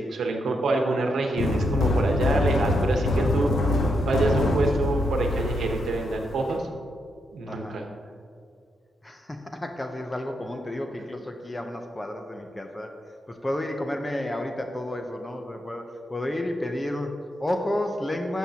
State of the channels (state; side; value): normal; both; correlation 0.81